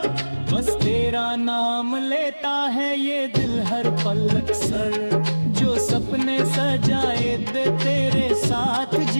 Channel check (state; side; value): inverted; both; correlation -1.00